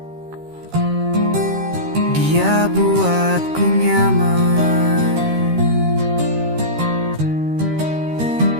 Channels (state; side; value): late; left; 13 ms